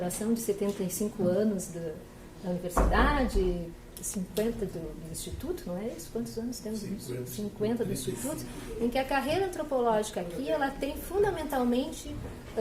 de 75 anos da universidade, 50 do Instituto, não é isso? Quantos anos temos? 50 do Instituto, em que a carreira antropológica aqui, ela tem fundamentalmente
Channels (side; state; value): both; identical; correlation 1.00